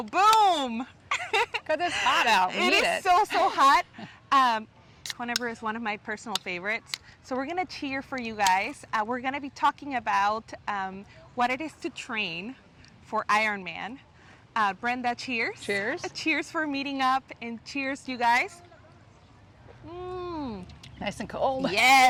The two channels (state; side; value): identical; both; correlation 1.00